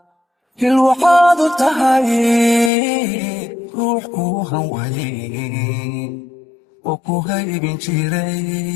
hil waxaad u tahay ruux kuu hanweyn oo ku haybin jiray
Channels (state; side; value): drops out; right; at 2.7 s